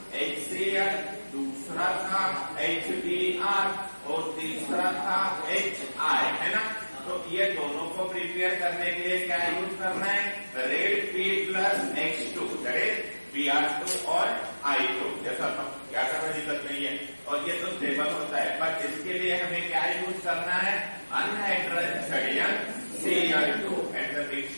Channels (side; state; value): both; inverted; correlation -1.00